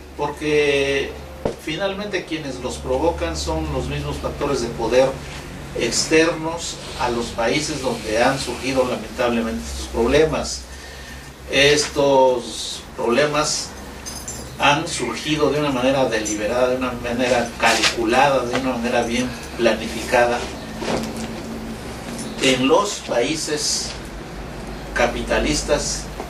porque finalmente quienes los provocan son los mismos factores de poder externos a los países donde han surgido lamentablemente estos problemas. Estos problemas han surgido de una manera deliberada, de una manera calculada, de una manera bien planificada en los países capitalistas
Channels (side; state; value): both; identical; correlation 1.00